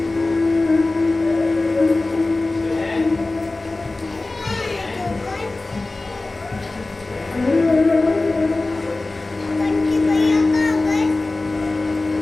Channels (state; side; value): quieter; right; 3.1 dB